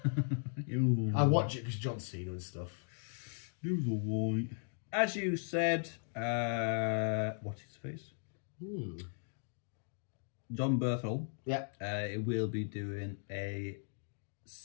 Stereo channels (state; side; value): silent; right; digital silence